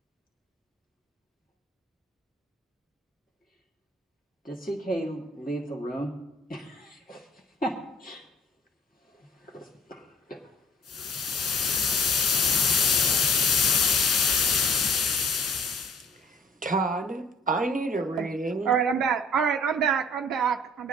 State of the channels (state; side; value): normal; both; correlation 0.52